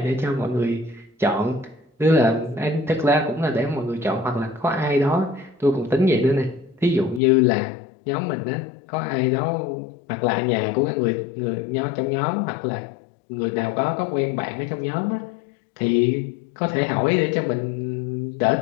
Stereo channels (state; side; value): drops out; right; at 7.2 s